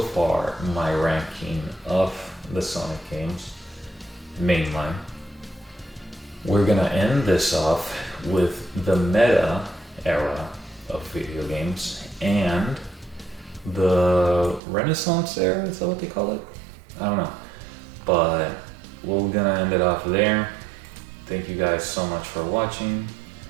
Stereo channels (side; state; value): left; drops out; at 14.6 s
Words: far my ranking of the Sonic games, mainline. We're gonna end this off with the meta era of video games and the Renaissance era, is that what they call it? I don't know. But we're gonna end it off there. Thank you guys so much for watching.